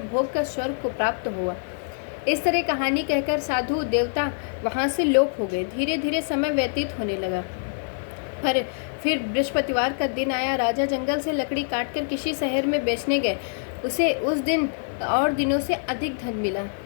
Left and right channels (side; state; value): right; silent; digital silence